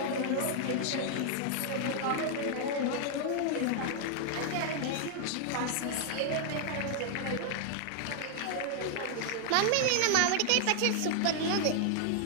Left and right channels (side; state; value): both; different; correlation 0.00